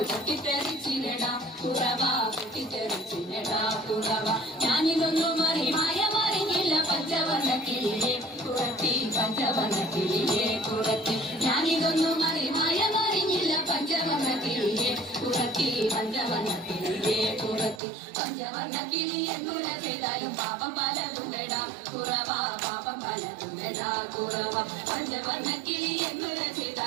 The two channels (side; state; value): left; drops out; at 17.8 s